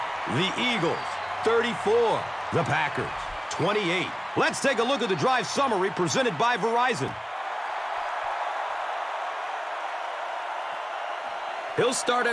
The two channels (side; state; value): both; identical; correlation 1.00